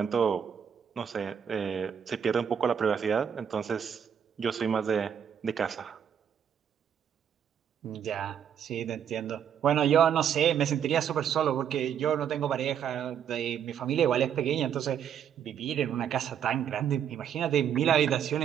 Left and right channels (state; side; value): quieter; left; 8.5 dB